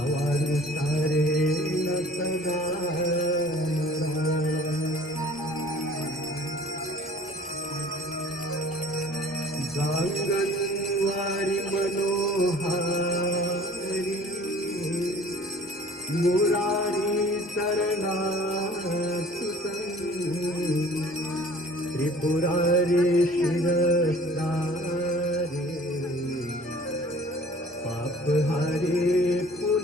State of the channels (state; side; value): normal; both; correlation 0.50